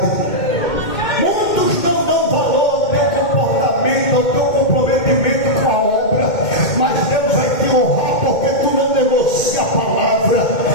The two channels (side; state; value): right; late; 2.2 ms